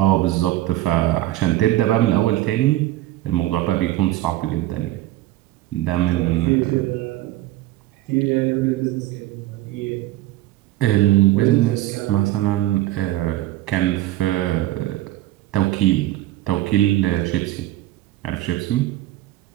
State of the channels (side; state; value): left; quieter; 15.6 dB